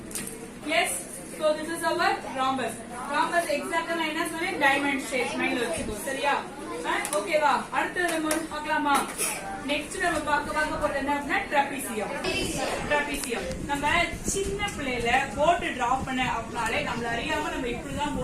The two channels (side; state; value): both; identical; correlation 1.00